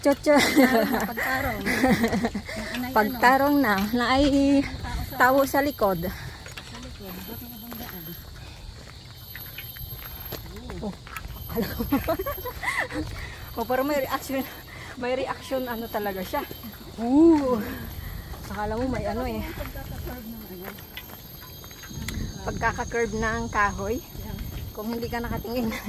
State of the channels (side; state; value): both; identical; correlation 1.00